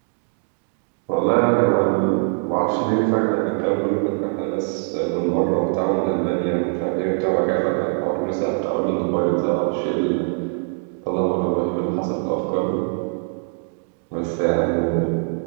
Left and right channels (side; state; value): left; silent; 56 dB below the other